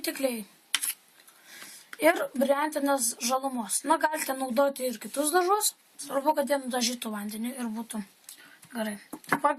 kliai. Ir briantinės žalumos. Galite naudoti ir kitus dažus. Svarbu, kad jie nudažytų vandenį ir būtų gerai. Taip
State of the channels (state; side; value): identical; both; correlation 1.00